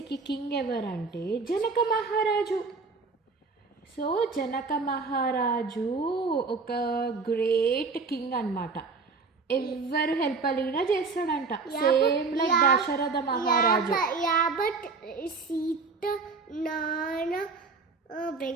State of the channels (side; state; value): left; quieter; 4.4 dB